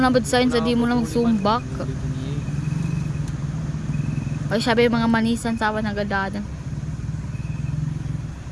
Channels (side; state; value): both; identical; correlation 1.00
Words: na ba sa di mo na magsumbak. Ay, sabi yung mga manisan sa awan nagadada.